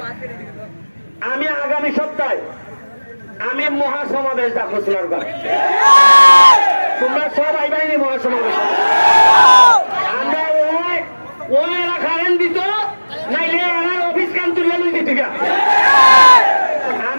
আমি আগামী সপ্তাহে আমি মহাসমাবেশ ডাকবো সোনারগাঁ। তোমরা সব আইবাইনি মহাসমাবেশ। আমরা ওই এরা কারেন্ট দিত, নাইলে এরা অফিস কাম তুলে লই দিত।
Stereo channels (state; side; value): inverted; both; correlation -1.00